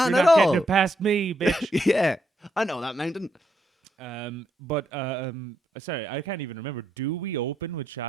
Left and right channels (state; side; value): normal; both; correlation 0.79